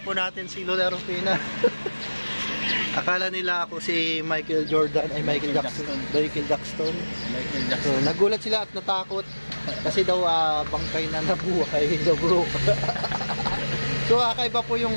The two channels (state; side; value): inverted; both; correlation -1.00